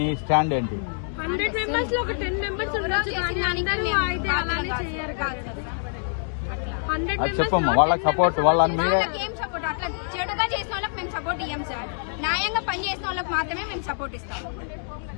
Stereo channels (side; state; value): right; silent; digital silence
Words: స్టాండ్ ఏంటి? 100 మెంబర్స్ లో ఒక 10 మెంబర్స్ చెప్పమ్మా, వాళ్ళకి సపోర్ట్ ఏం సపోర్ట్ అట్లా చెడుగా చేసిన వాళ్ళకి మేము సపోర్ట్ ఇయ్యం సార్, న్యాయంగా పని చేసిన వాళ్ళకి మాత్రమే మేము సపోర్ట్ ఇస్తాం।